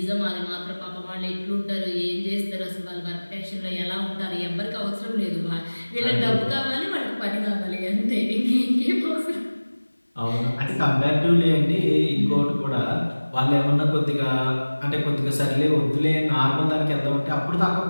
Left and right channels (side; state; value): both; inverted; correlation -1.00